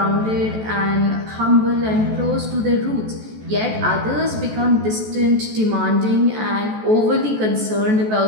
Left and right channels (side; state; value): left; late; 14 ms